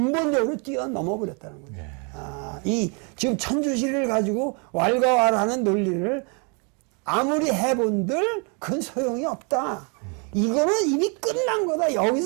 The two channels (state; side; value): quieter; left; 35.4 dB